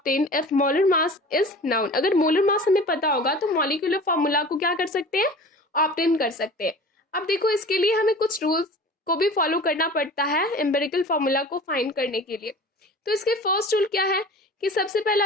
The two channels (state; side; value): normal; both; correlation 0.40